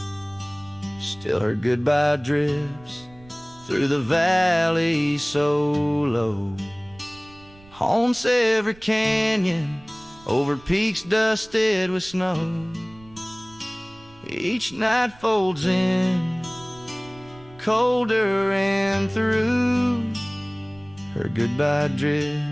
Still her goodbye drifts through the valley so low, haunts every canyon, over peaks dusted with snow. Each night folds in, colder and through. Her goodbye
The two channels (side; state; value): right; noise; rumble, 24 dB below the sound